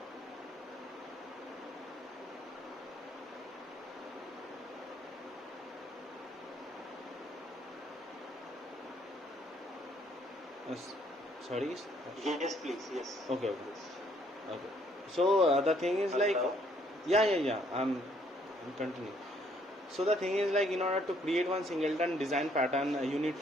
Sorry. Yes, please. Yes. Okay. Yes. Okay. So the thing is like, Hello? yeah. I'm continuing. So the thing is like in order to create one singleton design pattern, you need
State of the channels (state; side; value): normal; both; correlation 0.66